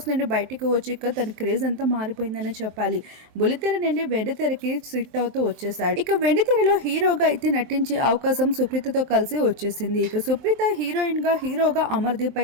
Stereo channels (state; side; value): late; left; 23 ms